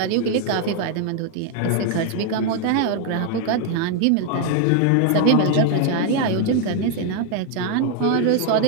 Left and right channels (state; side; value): different; both; correlation 0.00